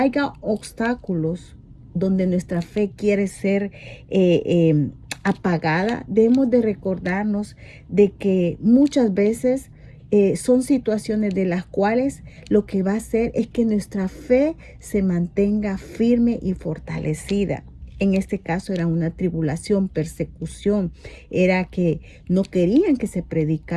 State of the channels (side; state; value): both; identical; correlation 1.00